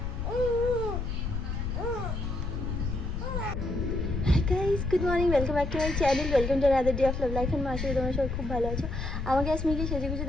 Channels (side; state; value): left; noise; rumble, 3 dB below the sound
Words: Good morning, welcome back to my channel, welcome to another day of love life. And মাসে তোমার সবাই খুব ভালো আছো। আমাকে স্মিকে সেজে গুজে